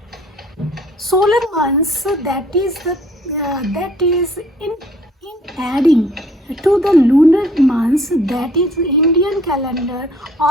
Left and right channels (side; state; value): both; normal; correlation 0.57